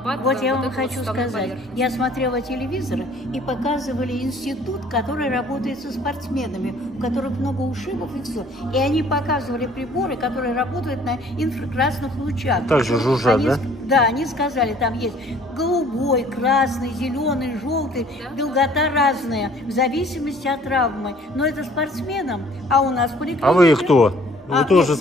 Вот я вам хочу сказать, я смотрела телевизор, и показывали институт, который работает со спортсменами, у которых много ушибов и все. И они показывали приборы, которые работают на инфракрасных лучах. Также жужжат, да? Да, они сказали, там есть голубой, красный, зеленый, желтый, долгота разная, в зависимости от травмы. Но это спортсменам, а у нас в поликлинике... А вы кто? Вы тоже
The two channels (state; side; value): normal; both; correlation 0.55